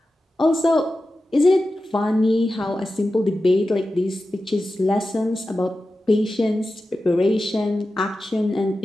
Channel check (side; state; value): both; normal; correlation 0.93